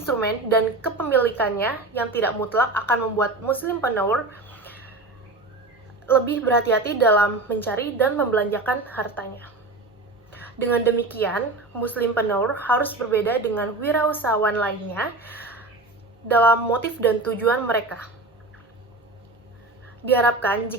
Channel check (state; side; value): quieter; left; 3.1 dB